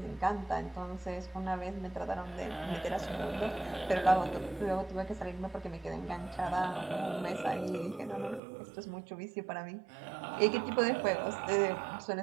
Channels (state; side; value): drops out; left; at 8.4 s